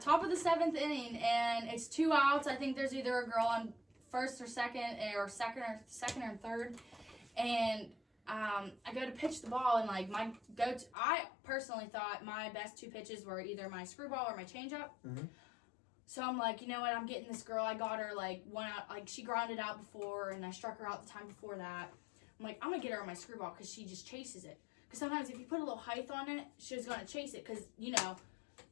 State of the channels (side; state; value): right; drops out; at 10.9 s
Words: top of the 7th inning, and it's 2 outs. I think there's either a girl on first or second or third, and I go to pitch the ball, and like I personally thought my best 2 pitches were either my screwball or my changeup. Mm-hmm. So I'm like, you know what? I'm getting this girl. I got her like 1 out. Like she grounded out before, and I struck her out the time before that. I'm like, I'm gonna get her on my screwball because she just chases it. Because sometimes if you put a little height on it, she's gonna chase it. Because